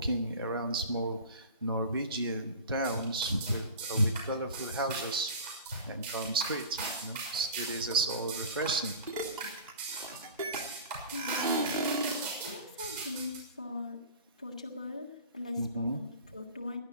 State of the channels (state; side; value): inverted; both; correlation -0.37